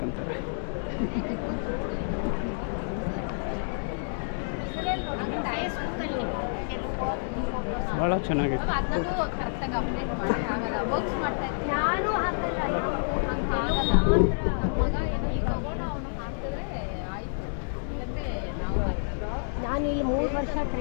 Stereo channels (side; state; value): right; silent; digital silence